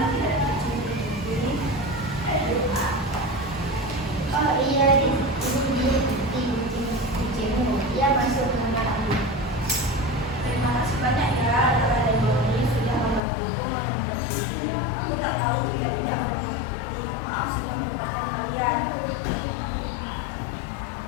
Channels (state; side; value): drops out; right; at 13.2 s